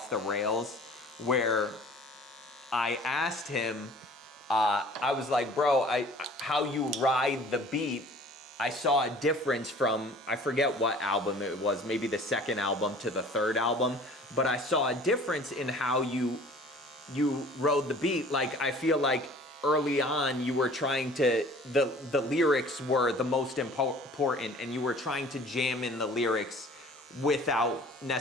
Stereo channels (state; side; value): normal; both; correlation 0.48